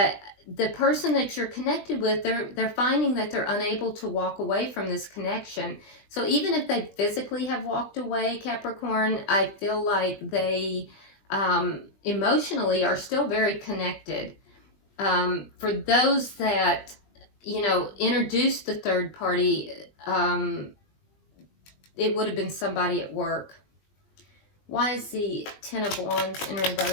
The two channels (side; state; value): right; late; 20 ms